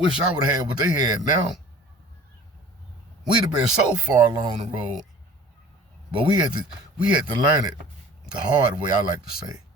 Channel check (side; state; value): both; normal; correlation 0.45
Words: I would have had what they had now. We'd have been so far along the road, but we had to learn it the hard way, I like to say.